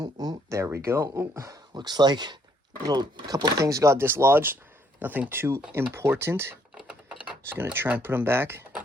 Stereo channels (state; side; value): normal; both; correlation 0.68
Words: ooh, there we go. Ooh, looks like a couple things got dislodged. Nothing too important. Just going to try and put them back.